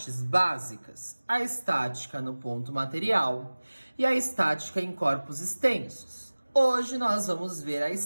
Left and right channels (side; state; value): both; inverted; correlation -1.00